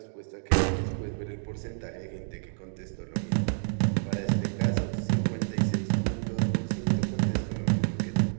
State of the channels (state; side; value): silent; left; digital silence